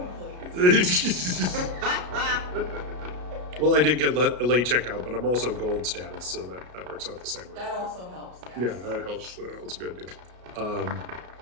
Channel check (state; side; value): late; left; 33 ms